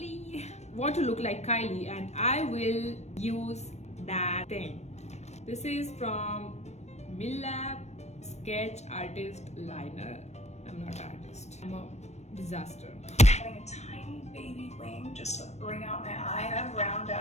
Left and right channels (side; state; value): right; late; 0.32 ms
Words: Want to look like Kylie, and I will use that thing. This is from Milap Sketch Artist Liner. I'm not an artist. I'm a disaster. having a tiny baby wing just to bring out my eye. I have round